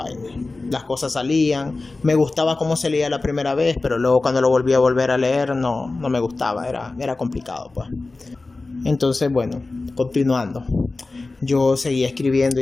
Las cosas salían. Me gustaba cómo se leía la primera vez, pero luego cuando lo volví a volver a leer no me gustaba. Era complicado pues. Entonces bueno, continuando. Yo seguía escribiendo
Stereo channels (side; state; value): right; quieter; 3.4 dB